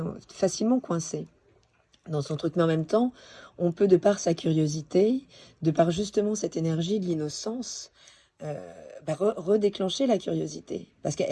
facilement coincé dans son truc. Mais en même temps, on peut, de par sa curiosité, de par justement cette énergie de l'innocence, redéclencher la curiosité, parce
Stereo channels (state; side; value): identical; both; correlation 1.00